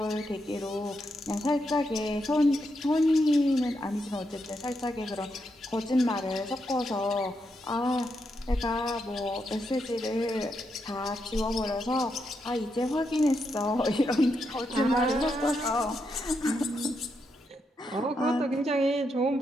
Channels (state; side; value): normal; both; correlation 0.82